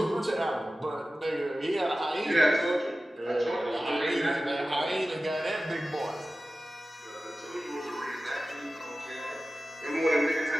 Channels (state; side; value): normal; both; correlation 0.95